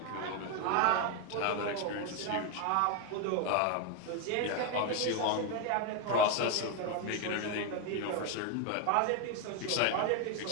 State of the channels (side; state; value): both; different; correlation 0.01